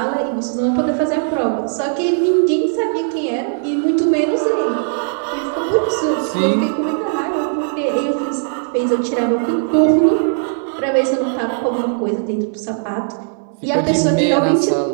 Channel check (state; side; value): silent; left; digital silence